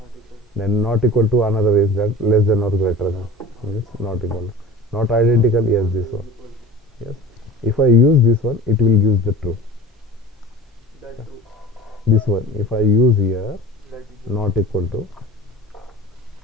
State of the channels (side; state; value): both; normal; correlation 0.38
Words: Then not equal to, another is that less than or greater than. Means not equal to. Not identical. Yes, this one. Yes. If I use this one, it will use the true. That true. This one, if I use here That is not equal to,